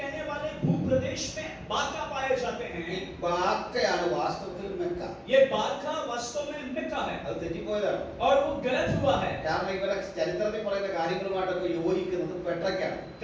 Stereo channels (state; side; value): identical; both; correlation 1.00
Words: वाले भूप्रदेश में बाका पाए जाते ഈ हैं। ബാക്കയാണ് വാസ്തവത്തിൽ മെക്ക. ये बाका वास्तव में मेक्का है അത് തെറ്റിപ്പോയതാണ്. और वो गलत हुआ है। കാരണം ഇവരെ ചരിത്രത്തിൽ പറയുന്ന കാര്യങ്ങളുമായിട്ടൊക്കെ യോജിക്കുന്നത് പെട്രയ്ക്കാണ്.